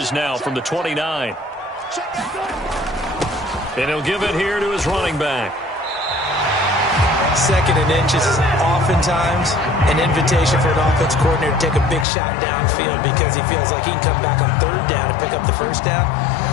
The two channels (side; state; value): right; drops out; at 12.1 s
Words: now from the 29. And he'll give it here to his running back. Second and inches is oftentimes an invitation for an offense coordinator to take a big shot downfield because he feels like he can come back on third down and pick up the first down.